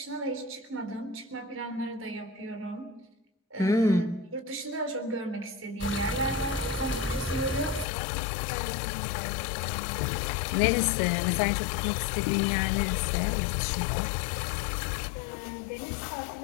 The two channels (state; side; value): drops out; right; at 7.9 s